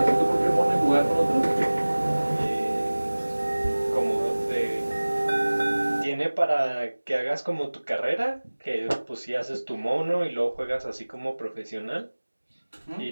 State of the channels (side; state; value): both; inverted; correlation -1.00